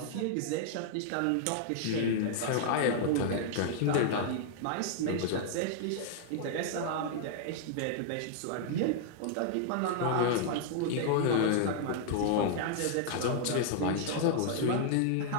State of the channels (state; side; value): different; both; correlation -0.01